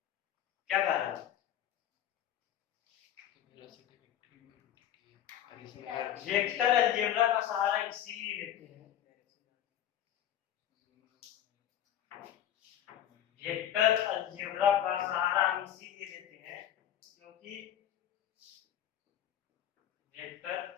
क्या कारण है, वेक्टर अलजेब्रा का सहारा इसीलिए लेते हैं, वेक्टर अलजेब्रा का सहारा हम इसीलिए लेते हैं क्योंकि वेक्टर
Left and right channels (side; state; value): right; quieter; 11.0 dB